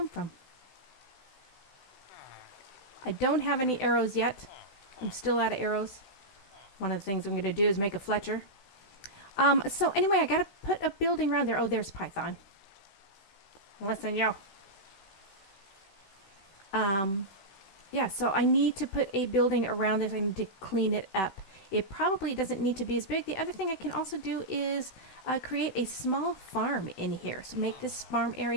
from? I don't have any arrows yet. I'm still out of arrows. One of the things I'm going to do is make a Fletcher. So anyway, I got to put a building around there. Oh, there's Python. Listen, yo. Yeah, so I need to put a building around this. I need to clean it up. it probably doesn't need to be as big. The other thing I can also do is create a small farm in here. So make this farm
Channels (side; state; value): right; late; 16 ms